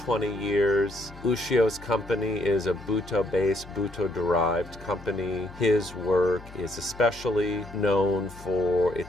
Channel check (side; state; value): left; noise; hum, 18 dB below the sound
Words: years. Ushio's company is a Buto-based, Buto-derived company. His work is especially known for